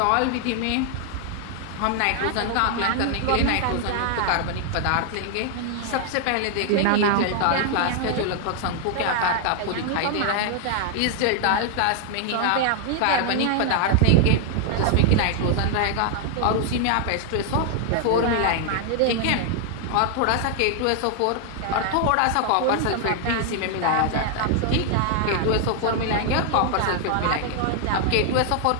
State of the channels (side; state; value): both; different; correlation 0.00